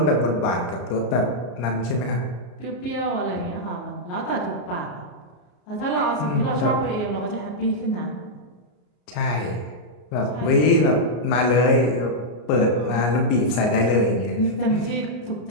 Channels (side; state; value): right; late; 33 ms